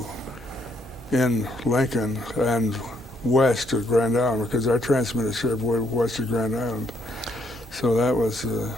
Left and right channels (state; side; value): normal; both; correlation 0.72